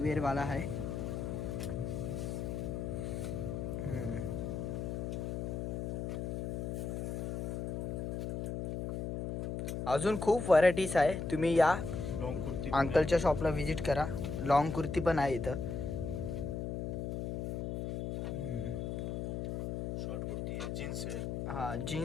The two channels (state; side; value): noise; left; hum, 3 dB below the sound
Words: वाला है. अजून खूप व्हरायटीज आहे. तुम्ही या लॉन्ग कुर्ती अंकलच्या शॉपला विजिट करा. लॉंग कुर्ती पण आहे इथं. शॉर्ट कुर्ती है, जीन्स है, हाँ